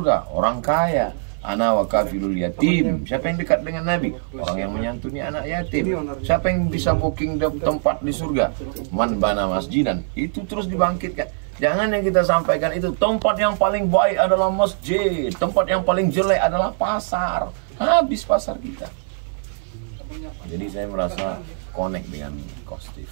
Orang kaya. Ana wa kafilul yatim. Siapa yang dekat dengan Nabi? Orang yang menyantuni anak yatim. Siapa yang bisa booking tempat di surga? Man bana masjidan. Itu terus dibangkitkan. Jangan yang kita sampaikan itu tempat yang paling baik adalah masjid, tempat yang paling jelek adalah pasar. Habis pasar kita. Jadi saya merasa connect dengan Coach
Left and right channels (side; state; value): left; silent; 58 dB below the other